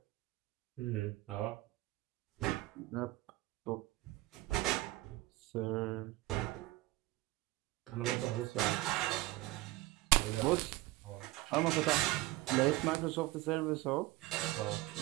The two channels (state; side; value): quieter; left; 18.8 dB